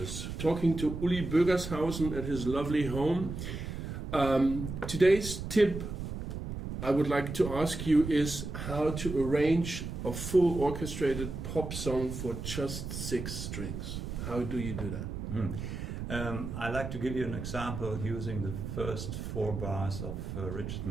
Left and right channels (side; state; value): right; noise; rumble, 6 dB below the sound